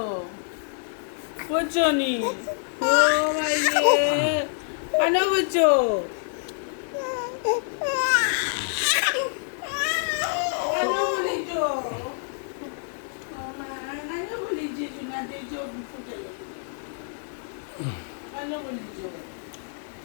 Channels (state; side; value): silent; right; 61 dB below the other